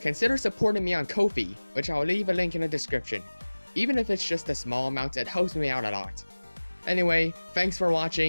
supporting me on Kofi, which I'll leave a link in the description. Even if it's just a small amount, it helps me out a lot. Anyway, thanks for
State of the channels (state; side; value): inverted; both; correlation -1.00